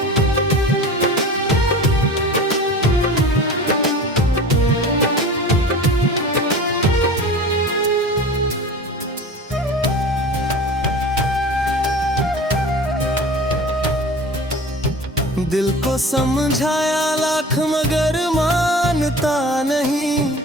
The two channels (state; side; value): normal; both; correlation 0.37